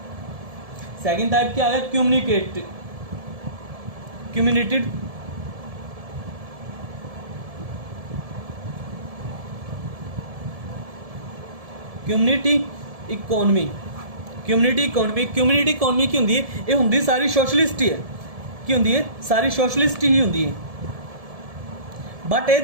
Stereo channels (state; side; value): late; left; 1.7 ms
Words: सैकेंड टाइप क्या आ गया, कम्युनिटेड community economy. Community economy, community economy की होंदी है, ये होंदी सारी सोशलिस्ट ही है। की होंदी है, सारी सोशलिस्ट ही होंदी है। बट